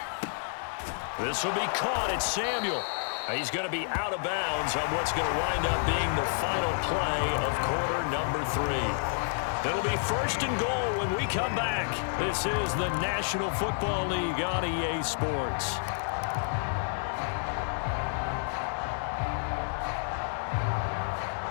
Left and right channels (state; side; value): silent; right; 58 dB below the other